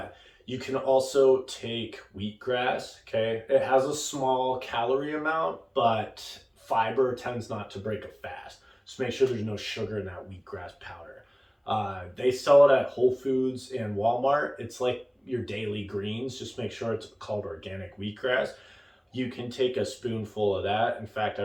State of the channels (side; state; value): both; identical; correlation 1.00